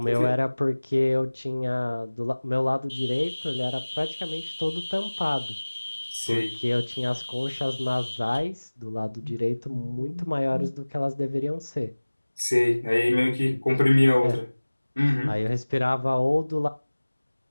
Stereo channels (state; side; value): inverted; both; correlation -1.00